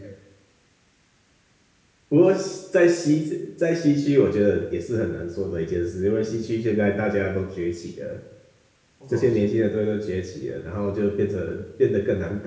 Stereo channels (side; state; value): both; identical; correlation 1.00